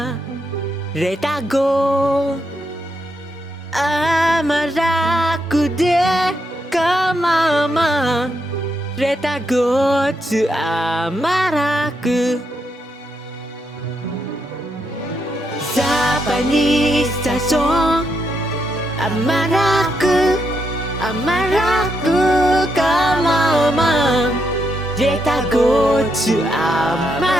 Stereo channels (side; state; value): both; normal; correlation 0.80